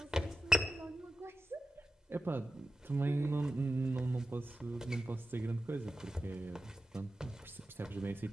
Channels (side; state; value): both; normal; correlation 0.90